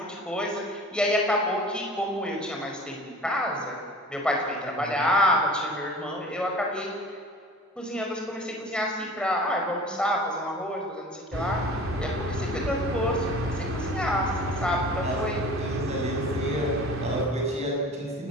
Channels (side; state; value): both; normal; correlation 0.42